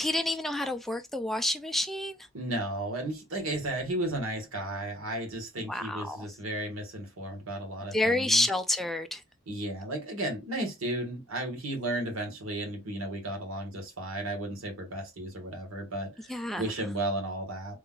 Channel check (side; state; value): both; normal; correlation 0.53